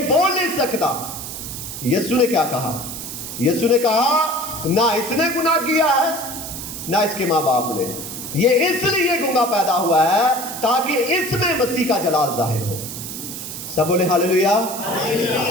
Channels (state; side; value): noise; right; hiss, 8 dB below the sound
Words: بول نہیں سکتا؟ یسوع نے کیا کہا؟ یسوع نے کہا نہ اس نے گناہ کیا ہے نہ اس کے ماں باپ نے، یہ اس لیے گونگا پیدا ہوا ہے تاکہ اس میں مسیح کا جلال ظاہر ہو۔ سب بولے ہاللویا۔